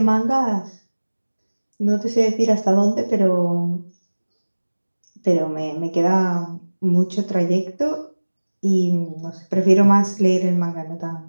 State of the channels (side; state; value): both; inverted; correlation -1.00